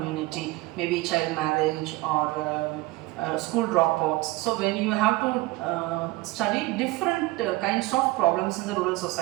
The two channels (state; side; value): quieter; left; 20.2 dB